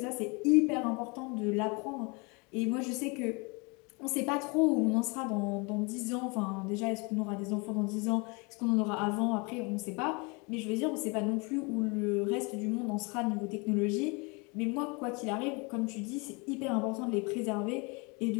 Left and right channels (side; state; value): right; quieter; 29.7 dB